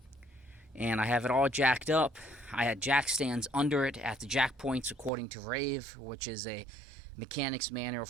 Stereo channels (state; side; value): drops out; left; at 5.1 s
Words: And I have it all jacked up. I had jack stands under it at the jack points according to Rave, which is a mechanic's manual